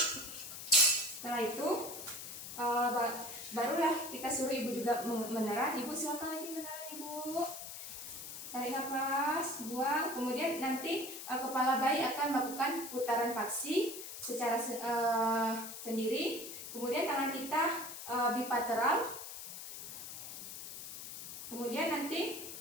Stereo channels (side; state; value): left; noise; hiss, 9 dB below the sound